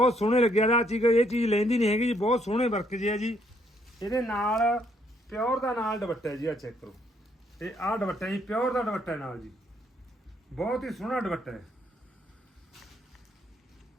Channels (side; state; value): both; normal; correlation 0.70